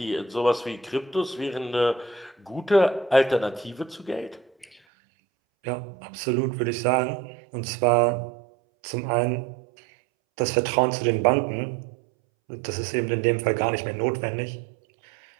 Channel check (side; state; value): left; drops out; at 4.8 s